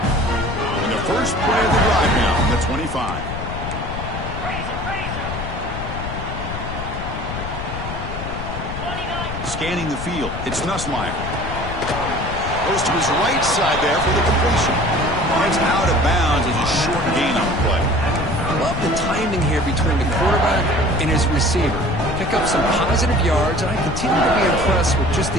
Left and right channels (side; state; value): left; noise; rumble, 7 dB below the sound